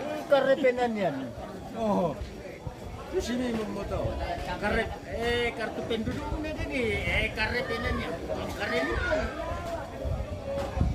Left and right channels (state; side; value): identical; both; correlation 1.00